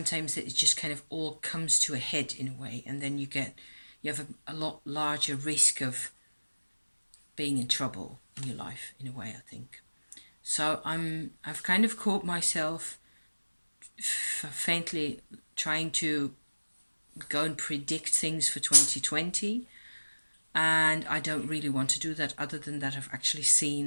it just kind of all comes to a head in a way, and then you have a lot larger risk of being in trouble in your life in a way, I think. So I've kind of caught myself faintly trying to go and predict things for 2020, and I don't really want to do that. Other than that, I've actually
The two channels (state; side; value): inverted; both; correlation -1.00